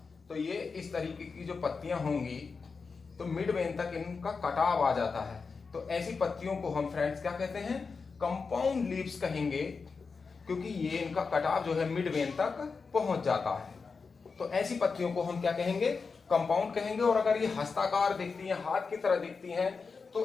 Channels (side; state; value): right; quieter; 4.9 dB